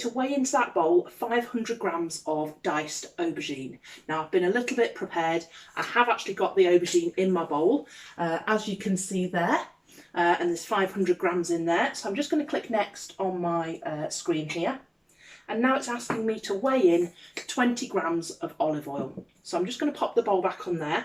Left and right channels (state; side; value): identical; both; correlation 1.00